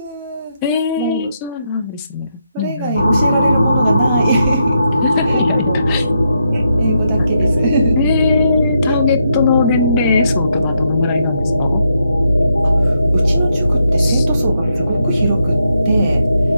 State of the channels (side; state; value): both; inverted; correlation -0.80